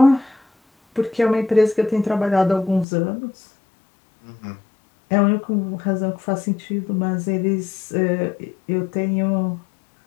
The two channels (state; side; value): drops out; right; at 2.9 s